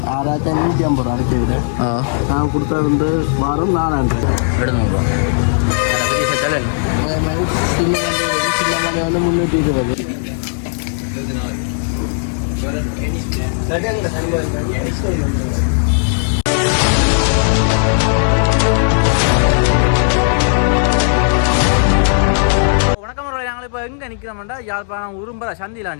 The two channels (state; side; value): silent; right; 69 dB below the other